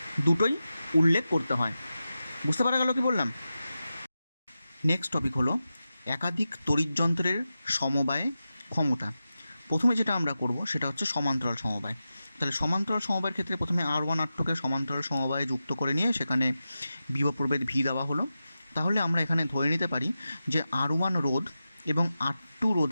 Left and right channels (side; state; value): both; inverted; correlation -0.92